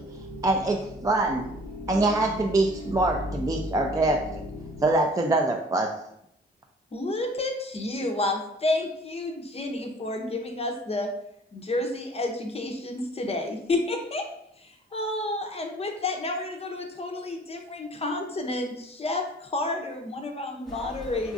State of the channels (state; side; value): normal; both; correlation 0.51